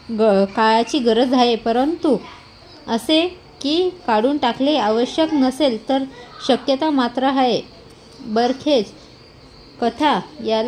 काळाची गरज आहे. परंतु असे की काढून टाकले आवश्यक नसेल तर शक्यता मात्र आहे. बरखेच कथा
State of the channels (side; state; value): both; identical; correlation 1.00